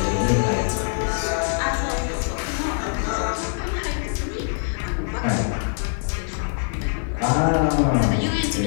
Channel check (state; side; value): silent; right; digital silence